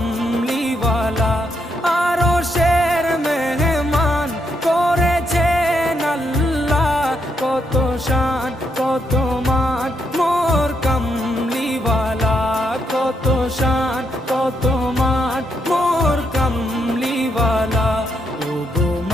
আরশের মেহমান করেছেন আল্লাহ, কত শান কত মান মোর কামলিওয়ালা, কত শান কত মান মোর কামলিওয়ালা। ও গো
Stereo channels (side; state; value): both; normal; correlation 0.78